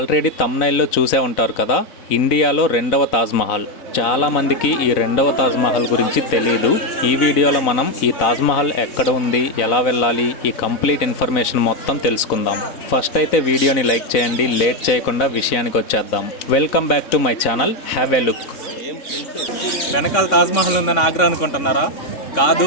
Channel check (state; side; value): late; right; 4.0 ms